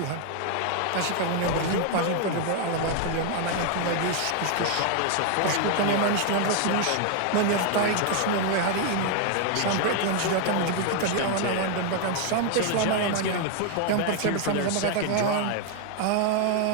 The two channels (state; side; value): different; both; correlation 0.00